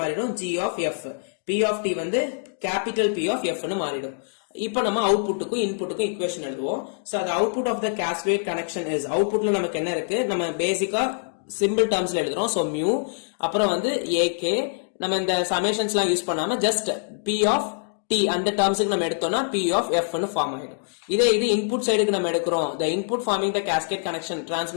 மாறிடும்? G of F. P of T வந்து கேபிட்டல் P of F னு மாறிடும். இப்போ நம்ம அவுட்புட்டுக்கும் இன்புட்டுக்கும் ஈக்குவேஷன் எழுதுவோம். So the output of the cascade connection is, அவுட்புட்ல நமக்கு என்ன இருக்கு? நம்ம பேசிக்கா சிம்பிள் டர்ம்ஸ்ல எழுதுறோம். சோ மியூ, அப்புறம் வந்து AK, நம்ம இந்த சமேஷன்ஸ்லாம் யூஸ் பண்ணாம ஜஸ்ட் P of T அந்த டர்ம்ஸ்க்கு நம்ம எடுத்தோம்னா P of F னு ஃபார்ம் ஆயிடும். இதே இது இன்புட் சைடுக்கு நம்ம எடுக்கிறோம். the input forming the cascade connection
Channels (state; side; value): silent; right; digital silence